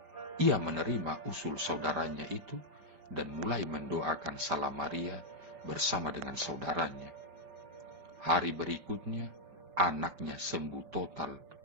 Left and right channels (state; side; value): late; left; 5.1 ms